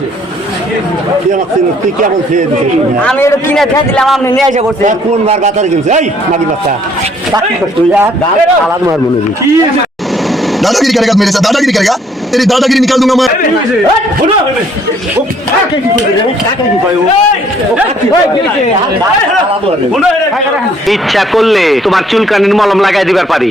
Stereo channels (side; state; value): both; normal; correlation 0.63